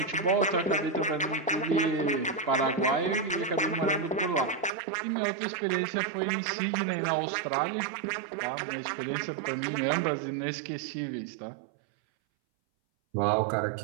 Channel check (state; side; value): drops out; left; at 4.7 s